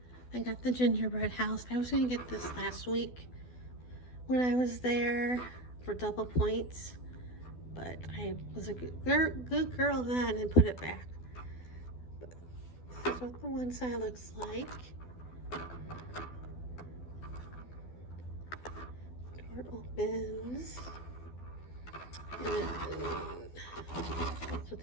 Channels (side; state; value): right; late; 12 ms